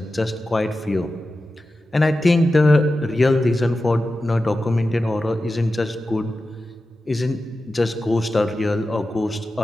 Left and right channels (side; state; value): both; normal; correlation 0.93